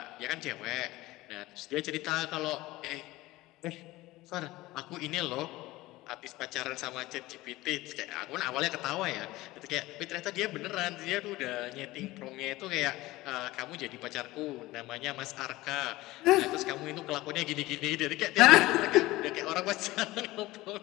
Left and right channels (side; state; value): right; quieter; 18.7 dB